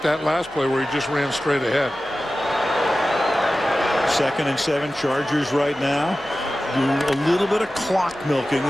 that last play where he just ran straight ahead. 2nd and 7, Chargers right now do a little bit of clock milking.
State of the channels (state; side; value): normal; both; correlation 0.95